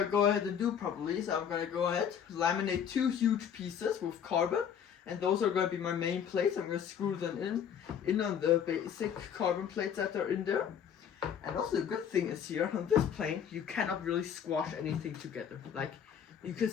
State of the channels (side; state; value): right; quieter; 8.2 dB